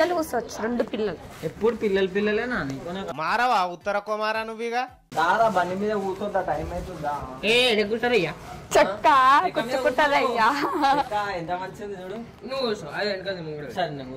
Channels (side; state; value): both; identical; correlation 1.00